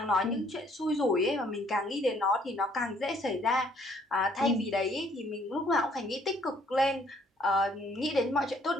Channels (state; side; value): normal; both; correlation 0.64